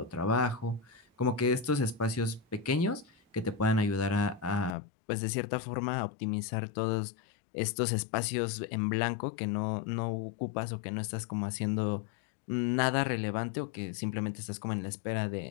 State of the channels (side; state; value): right; drops out; at 4.8 s